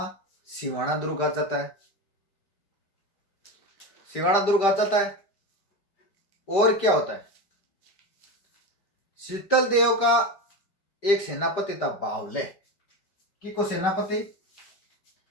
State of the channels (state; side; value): late; right; 5.1 ms